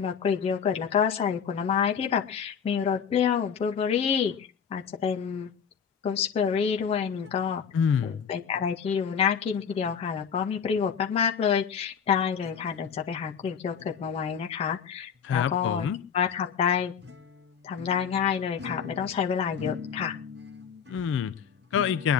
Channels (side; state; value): right; quieter; 7.1 dB